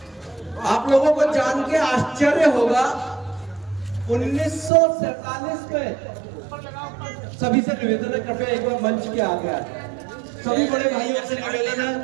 आप लोगों को जान के आश्चर्य होगा, 1947 में सभी से निवेदन है, कृपया एक बार मंच के आगे आ जाए। सभी बड़े भाइयों से निवेदन है,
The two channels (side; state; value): left; drops out; at 4.7 s